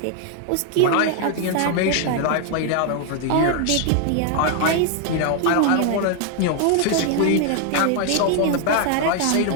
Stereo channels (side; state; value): both; different; correlation 0.00